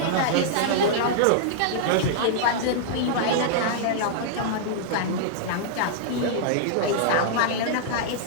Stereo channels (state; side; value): different; both; correlation -0.02